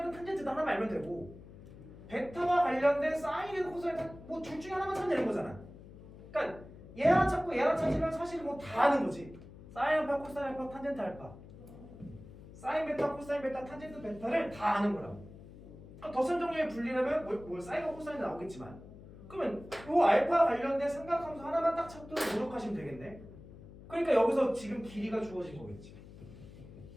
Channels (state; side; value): noise; left; hum, 17 dB below the sound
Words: 탄젠트든 하나만 알면 되고 베타와 관련된 사인이든 코사인이든 뭐 둘 중에 하나만 찾으면 되는 거잖아. 그러니까 얘 하나 찾고 얘 하나 찾으면 사실 뭐 다 아는 거지. 사인 알파, 코사인 알파, 탄젠트 알파. 사인 베타, 코사인 베타, 탄젠트 베타를 다 아는 거라고. 그러니까 덧셈 정리에 분리하면 뭐 사인과 코사인이 나오겠지만 그러면 요 알파 관련된 삼각함수 하나만 딱 찾도록 노력하시면 되겠네. 그러니까 여기서 지금 길이가 주어진 거겠지.